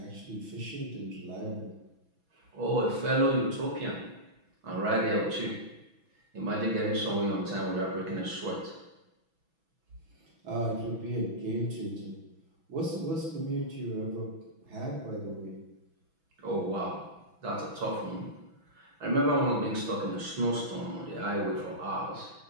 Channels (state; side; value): late; left; 6.1 ms